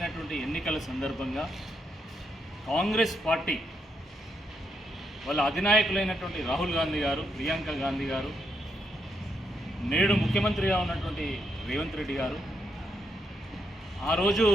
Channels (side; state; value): both; normal; correlation 0.79